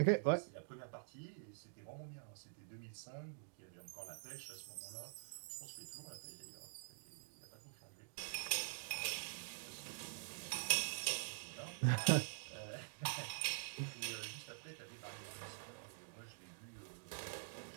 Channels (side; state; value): left; silent; digital silence